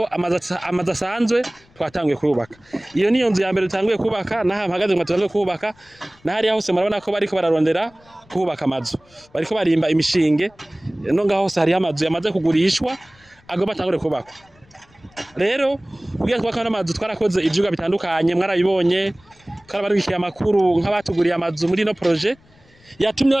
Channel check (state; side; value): noise; left; rumble, 30 dB below the sound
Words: amazu asanzwe twatanguye kubaka. Iyo niyo nzu ya mbere tutanguye kubaka naha mpagaze ngo tutanguye kubaka nahari hose murabona ko bariko bararondera kubaka amazu. Bariko barimba imishinge no ngaho hose hari amazu yamaze kugurishwa agomba atangure kubakwa. Rero kugira twaka n'amazu twarakoze ivyuga bitandukanye mwarabibonye twarabarukiye amakuru nk'abatuguriye amazu muri no projet yatumye